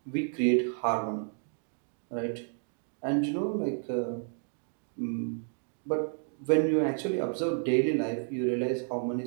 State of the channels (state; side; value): silent; left; 57 dB below the other